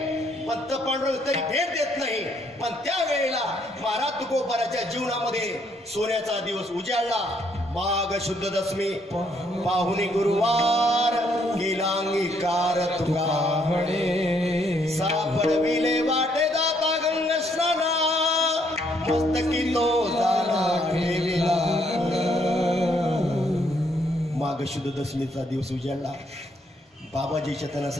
पण पांडुरंग तरी भेट देत नाही. पण त्यावेळेला महाराज तुकोबराच्या जीवनामध्ये सोन्याचा दिवस उजाडला. माघ शुद्ध दशमी पाहुणी गुरुवार केला अंगीकार तुका सापडविले वाटे दाता गंग स्नाना मस्तकी तो झाला ठेविला. माघ शुद्ध दशमीचा दिवस उजाडला. बाबाजी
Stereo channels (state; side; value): normal; both; correlation 0.71